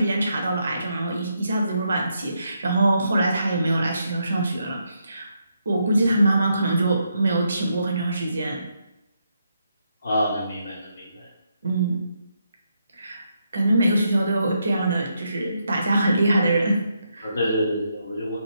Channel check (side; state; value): both; inverted; correlation -0.79